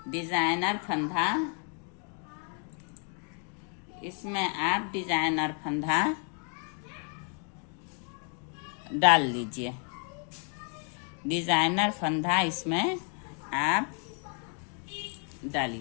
डिजाइनर फंदा डाल लीजिए। डिजाइनर फंदा इसमें आप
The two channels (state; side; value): quieter; right; 39.0 dB